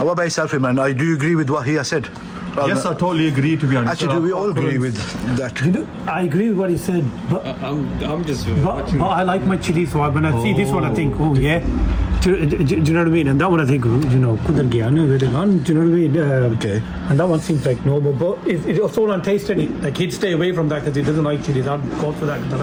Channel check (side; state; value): both; identical; correlation 1.00